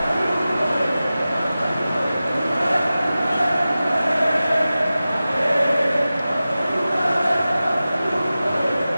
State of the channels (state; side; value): inverted; both; correlation -0.95